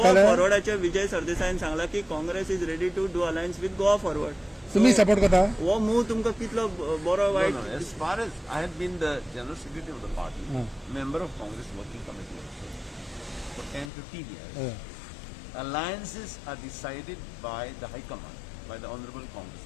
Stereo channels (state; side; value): drops out; right; at 13.9 s